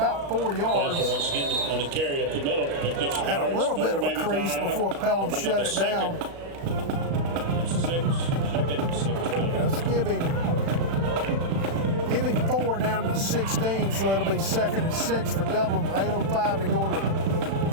4 yards. Had a little bit of a crease before Pelham shut it down. Let's give him 4 down to 16, so it'll be 2nd and 6 for Dublin. 8:05 to go in the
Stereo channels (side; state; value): left; late; 36 ms